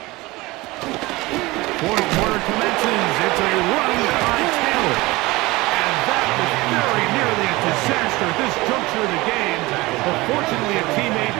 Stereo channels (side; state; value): left; quieter; 21.2 dB